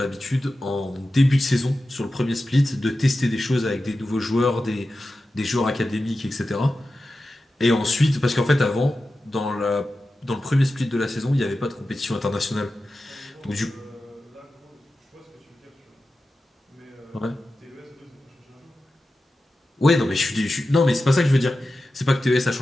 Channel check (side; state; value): both; normal; correlation 0.93